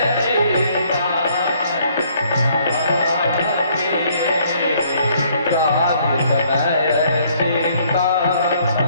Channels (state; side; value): inverted; both; correlation -0.64